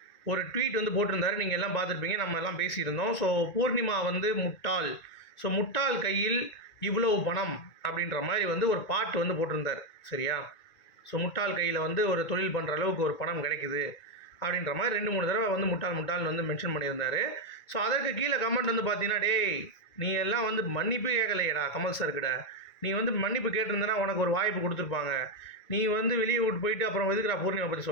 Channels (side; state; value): right; late; 1.9 ms